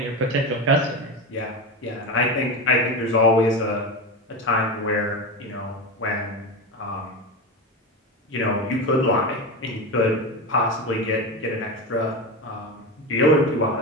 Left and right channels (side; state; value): both; normal; correlation 0.20